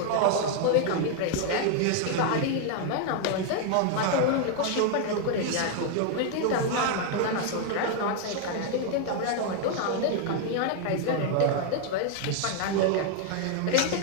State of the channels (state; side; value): different; both; correlation 0.00